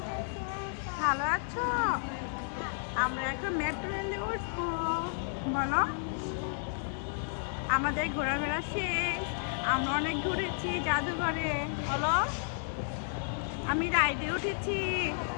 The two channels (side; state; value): right; silent; 56 dB below the other